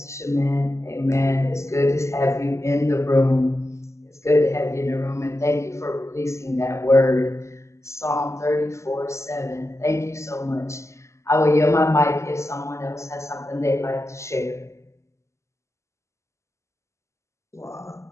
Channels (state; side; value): late; right; 0.14 ms